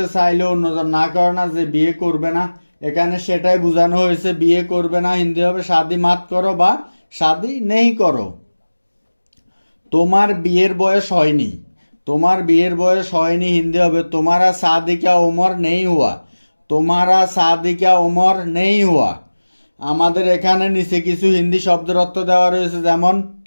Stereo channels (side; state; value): both; inverted; correlation -1.00